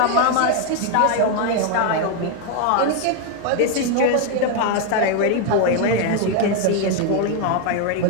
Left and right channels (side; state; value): both; different; correlation 0.01